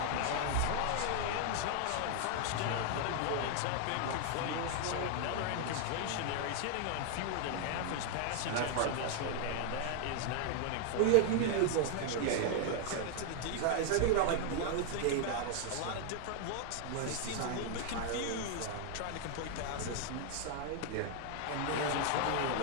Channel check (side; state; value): both; different; correlation 0.00